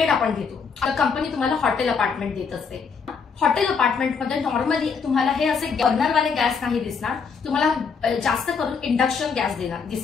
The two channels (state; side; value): quieter; right; 5.7 dB